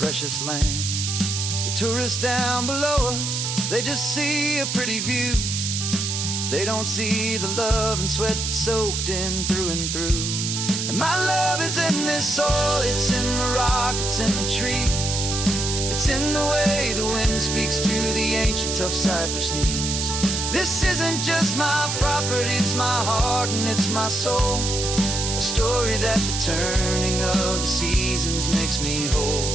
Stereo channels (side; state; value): right; noise; hiss, 2 dB below the sound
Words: land. The tourists down below us, they just see a pretty view. They don't see the love and sweat that's soaked in through and through. And my love is in this soil, it's in the rock, it's in the trees. It's in the way the wind speaks to the ancient tough cypress knees. This isn't just my property, it's my heart and it's my soul. A story that the turning of the seasons makes me whole.